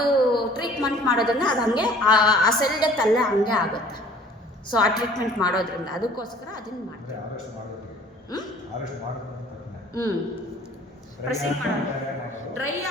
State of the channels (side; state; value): both; normal; correlation 0.51